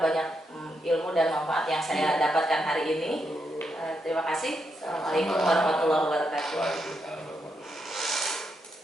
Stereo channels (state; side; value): normal; both; correlation 0.81